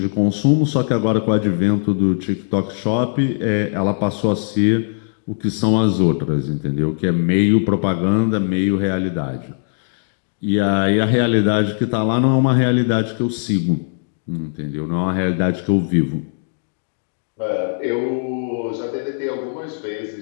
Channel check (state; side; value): silent; right; digital silence